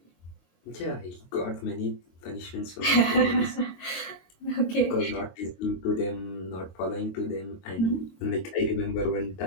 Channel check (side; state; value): right; late; 22 ms